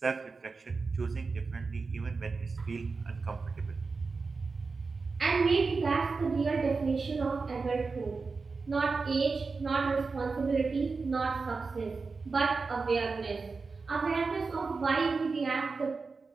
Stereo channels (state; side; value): quieter; left; 4.4 dB